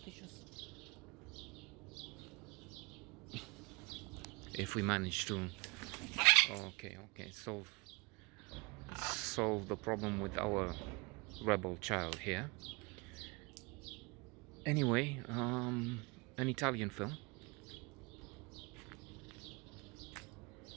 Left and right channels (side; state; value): left; quieter; 27.6 dB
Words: if we manage to okay solve the problem with our rebel child here. Anyway, an Italian film,